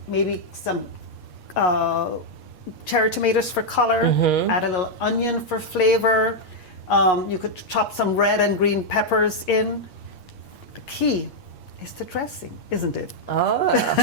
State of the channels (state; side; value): late; right; 8.5 ms